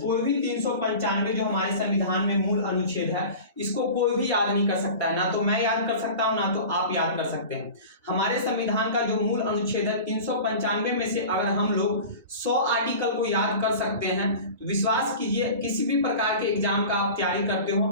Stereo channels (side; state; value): both; inverted; correlation -0.36